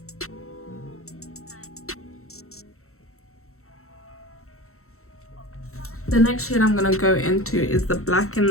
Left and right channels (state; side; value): late; right; 0.63 ms